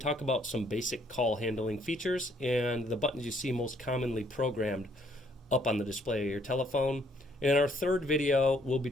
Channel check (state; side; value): normal; both; correlation 0.66